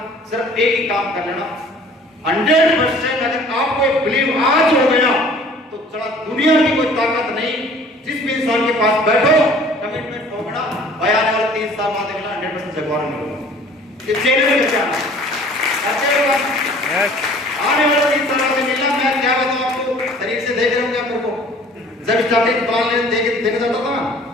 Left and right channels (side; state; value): both; normal; correlation 0.51